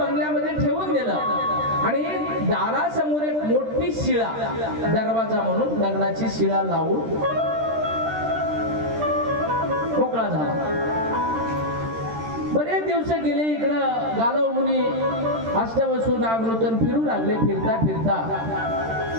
ठेवून दिलं. आणि दारासमोर एक मोठी शिळा, दरवाजा म्हणून दगडाची शिळा लावून मोकळा झाला. बरेच दिवस गेले. इकडं गालव मुनी अष्टवसू नागनूतन फिरू लागले. फिरता फिरता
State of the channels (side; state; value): left; late; 13 ms